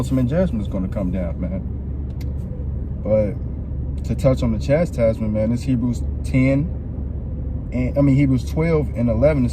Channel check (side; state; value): both; identical; correlation 1.00